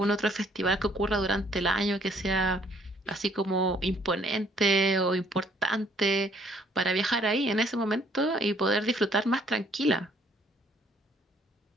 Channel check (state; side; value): normal; both; correlation 0.63